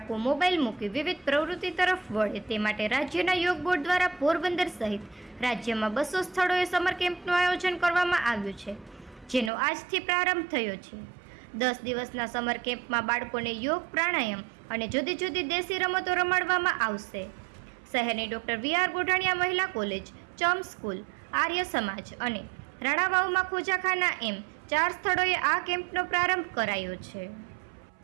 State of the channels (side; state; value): left; drops out; at 9.5 s